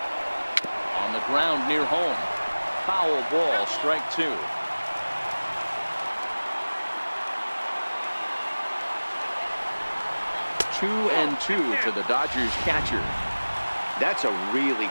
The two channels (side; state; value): both; inverted; correlation -1.00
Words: On the ground near home. Foul ball, strike 2. 2-2 to the Dodgers catcher. That's a really